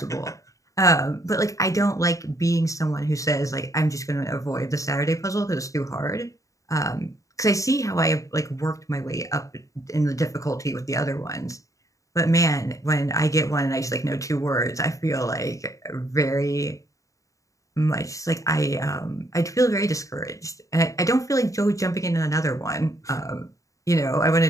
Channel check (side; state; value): right; late; 0.16 ms